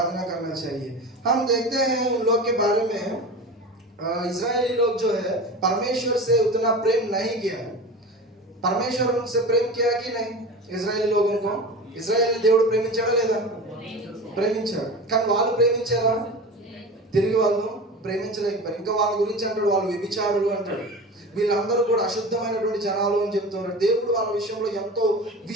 करना चाहिए। हम देखते हैं उन लोग के बारे में, इजरायली लोग जो है परमेश्वर से उतना प्रेम नहीं किया, परमेश्वर उनसे प्रेम किया कि नहीं, इजरायली लोगों को ఇజ్రాయేల్ దేవుడు ప్రేమించాడా లేదా, ప్రేమించాడు, కానీ వాళ్ళు ప్రేమించారా, తిరిగి వాళ్ళు ప్రేమించలేకపోయారు। ఇంకా వాళ్ళ గురించి అంటాడు, వాళ్ళు వ్యభిచారులు అంటాడు, వీళ్ళందరూ కూడా అశుద్ధమైనటువంటి జనాలు అని చెప్తున్నారు। దేవుడు వాళ్ళ విషయంలో ఎంతో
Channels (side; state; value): both; normal; correlation 0.31